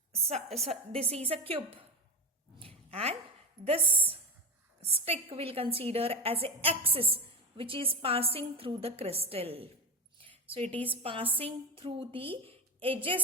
this is a cube, and this stick we'll consider as an axis which is passing through the crystal. So it is passing through the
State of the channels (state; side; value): normal; both; correlation 0.18